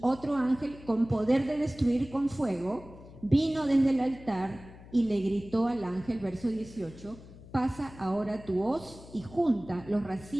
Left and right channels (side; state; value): left; noise; hum, 18 dB below the sound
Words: otro ángel con poder de destruir con fuego vino desde el altar y le gritó al ángel, verso 18, pasa ahora tu hoz y junta los